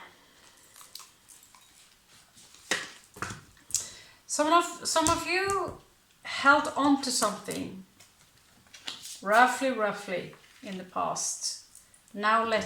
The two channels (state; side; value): identical; both; correlation 1.00